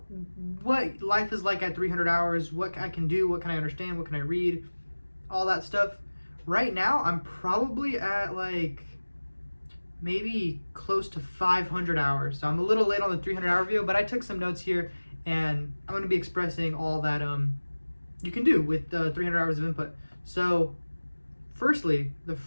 what life is like at 300 hours, what I can do, what can I understand, what can I read, all that stuff. Right now, I'm probably at like maybe close to 500 hours. So I'm a little late on the 300-hour video, but I took some notes here, and I'm going to be expressing all that you can do with 300 hours of input. So firstly, the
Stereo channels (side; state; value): both; inverted; correlation -1.00